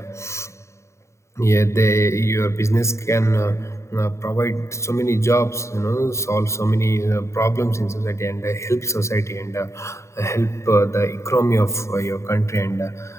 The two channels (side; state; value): right; late; 0.14 ms